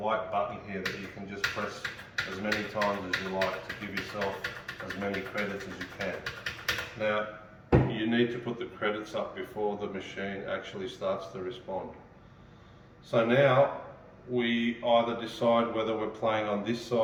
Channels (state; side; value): identical; both; correlation 1.00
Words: button here that you can just press as many times as you like to give yourself as many credits as you can. Now, you need to put the credits up before the machine actually starts to respond. So now we either decide whether we're playing on this